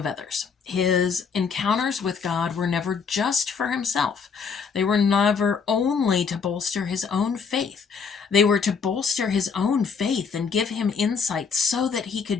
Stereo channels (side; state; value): right; quieter; 5.8 dB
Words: others. His encounters with God were never just for himself. They were never only to bolster his own faith. They were to bolster his own faith and give him insight so that he